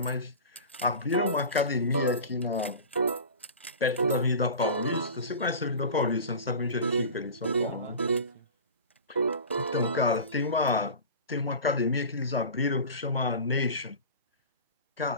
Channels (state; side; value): inverted; both; correlation -0.33